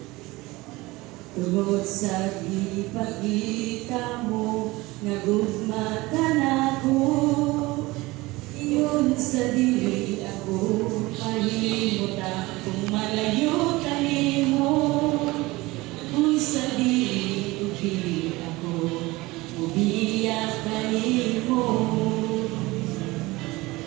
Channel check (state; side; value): quieter; left; 21.1 dB